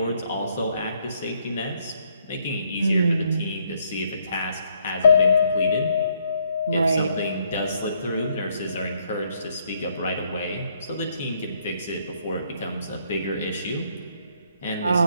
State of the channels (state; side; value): inverted; both; correlation -0.71